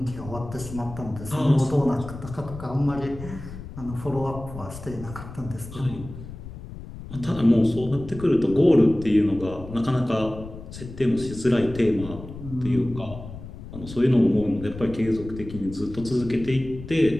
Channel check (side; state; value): left; noise; rumble, 13 dB below the sound